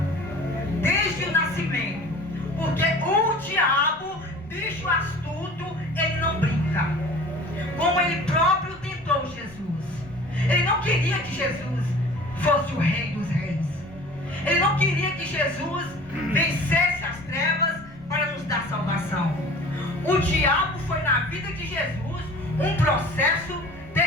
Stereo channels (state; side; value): noise; left; rumble, 23 dB below the sound